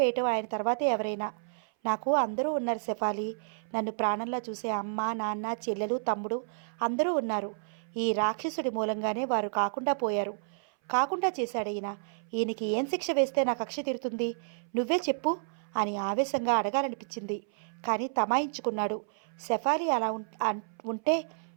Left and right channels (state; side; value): silent; left; 57 dB below the other